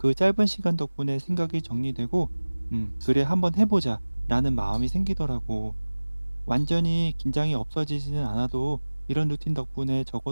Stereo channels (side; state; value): both; inverted; correlation -1.00